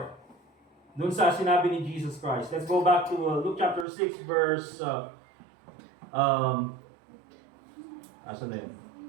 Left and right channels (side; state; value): left; drops out; at 3.9 s